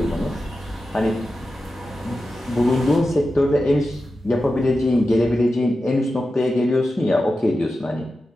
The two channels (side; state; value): both; normal; correlation 0.92